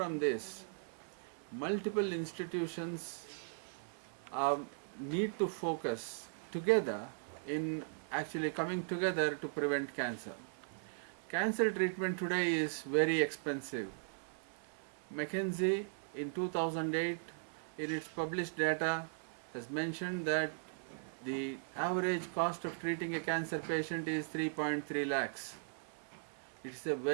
this, multiple institutions need to focus together in actually coming together to prevent cancer. Cancer treatment today is very expensive. McKinsey in 2008 in its published data has mentioned that the average cost of treating a cancer patient is 3.3 lakhs. It is a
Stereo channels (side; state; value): left; silent; 52 dB below the other